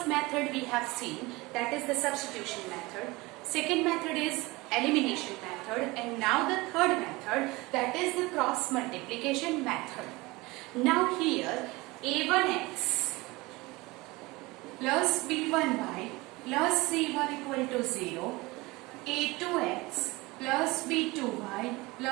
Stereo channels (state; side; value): quieter; left; 22.4 dB